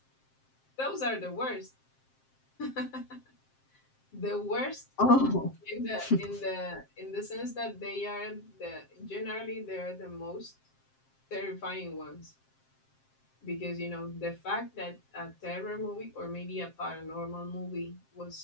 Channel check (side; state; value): right; late; 7.6 ms